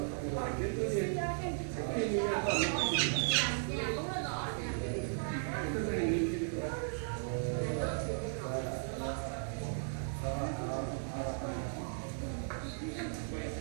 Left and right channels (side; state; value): left; silent; 54 dB below the other